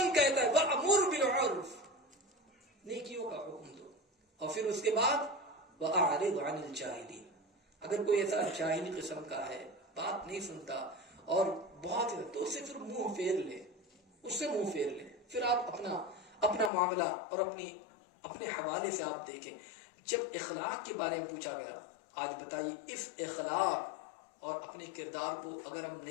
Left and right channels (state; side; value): drops out; right; at 16.7 s